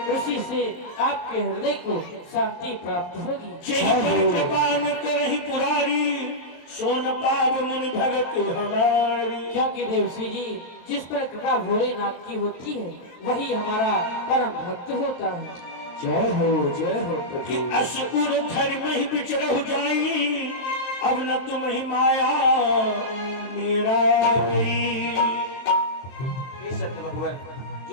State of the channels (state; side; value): late; right; 23 ms